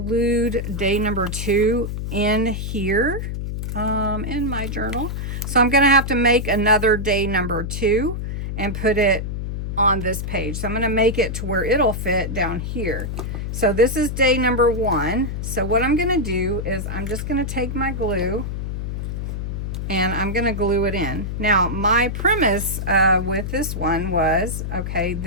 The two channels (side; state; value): left; noise; hum, 4 dB below the sound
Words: day number 2 in here in my journal. So I'm going to have to make another day number 2 and put it on this page. So I'm going to make it to where it'll fit down here. So this is day number 1. So what I'm going to do is I'm just going to take my glue and I'm going to glue it in. Now, my premise with this one was, okay,